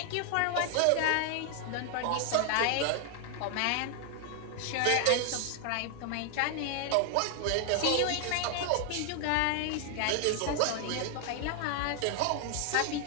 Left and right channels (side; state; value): both; different; correlation 0.00